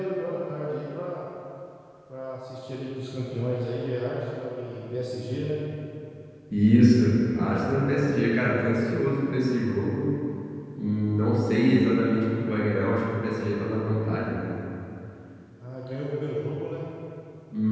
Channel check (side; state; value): both; identical; correlation 1.00